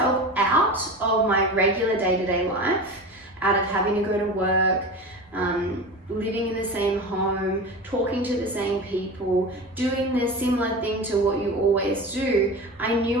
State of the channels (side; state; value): both; normal; correlation 0.30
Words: out of my regular day-to-day life, out of having to go to work, living in the same home, talking to the same people, doing the similar thing to what you always do. I